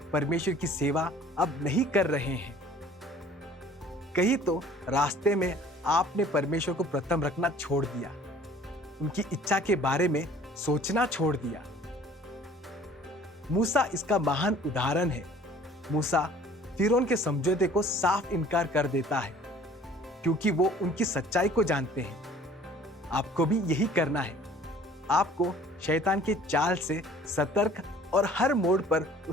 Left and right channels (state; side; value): normal; both; correlation 0.51